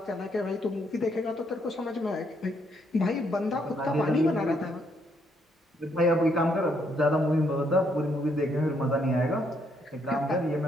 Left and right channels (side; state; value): both; normal; correlation 0.73